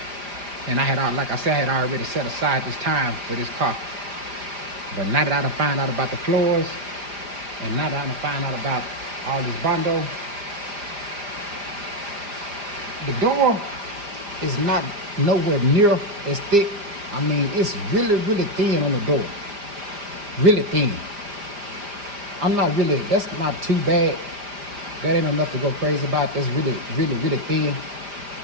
And like I said, I had already set aside this time for this car. But now that I done find out about the floors, and now that I done find out about all this bondo, the door is not nowhere near as thick. I mean, it's really, really thin on the door. Really thin. That's not too bad. That ain't enough to go crazy about. That's really, really, really thin.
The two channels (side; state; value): left; late; 5.0 ms